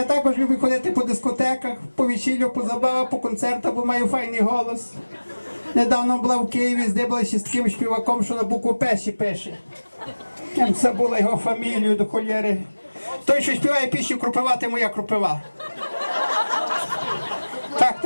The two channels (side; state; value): both; inverted; correlation -1.00